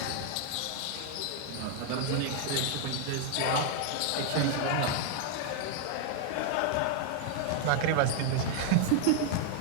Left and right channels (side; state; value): both; different; correlation 0.00